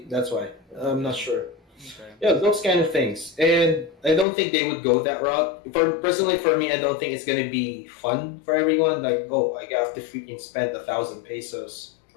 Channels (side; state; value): right; drops out; at 4.2 s